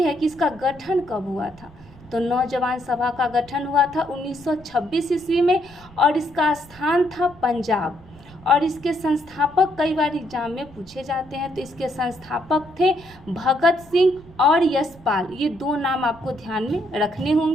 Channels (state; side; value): noise; right; rumble, 22 dB below the sound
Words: है कि इसका गठन कब हुआ था। तो नौजवान सभा का गठन हुआ था 1926 ईस्वी में और इसका स्थान था पंजाब। और इसके संस्थापक कई बार एग्जाम में पूछे जाते हैं। तो इसके संस्थापक थे भगत सिंह और यशपाल। ये दो नाम आपको ध्यान में रखने